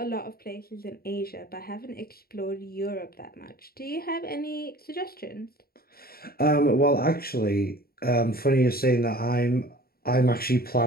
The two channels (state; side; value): late; right; 0.44 ms